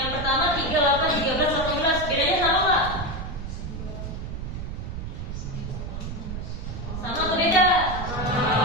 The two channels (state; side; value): noise; right; rumble, 6 dB below the sound